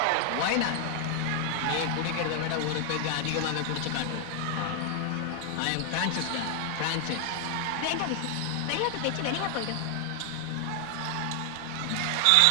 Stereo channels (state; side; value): different; both; correlation 0.00